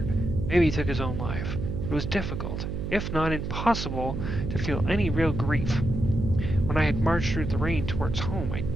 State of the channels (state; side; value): noise; right; hum, 4 dB below the sound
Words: Maybe he took his own life. It was difficult, if not impossible, to feel any real grief. When I had marched through the rain towards home, I